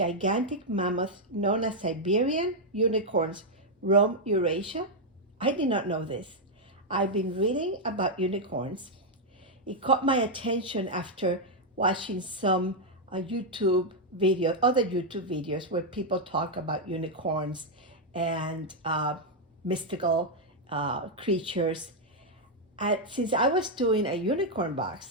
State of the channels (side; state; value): both; normal; correlation -0.02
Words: mammoths known as Siberian unicorns roamed Eurasia? I did not know this. I've been reading about unicorns. It caught my attention after watching some other YouTube videos where people talk about unicorns and mystical creatures. Since I was doing a unicorn